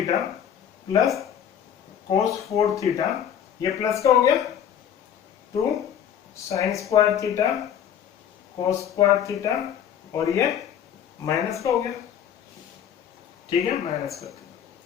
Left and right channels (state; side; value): quieter; right; 9.2 dB